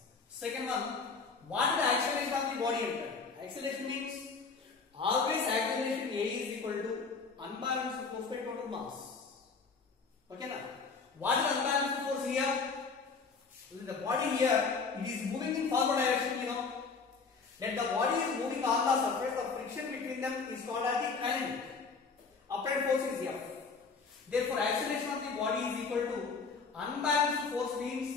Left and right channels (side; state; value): right; quieter; 4.8 dB